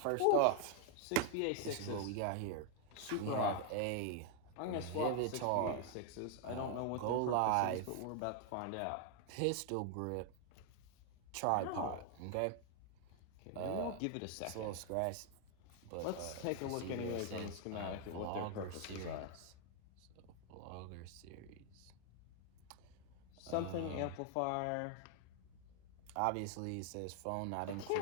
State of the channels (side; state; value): both; different; correlation 0.00